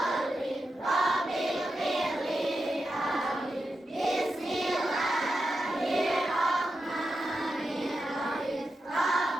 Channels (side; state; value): both; normal; correlation 0.89